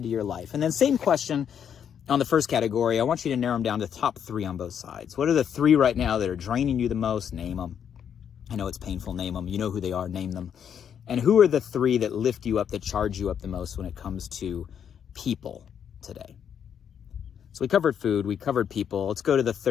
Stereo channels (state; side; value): quieter; right; 8.4 dB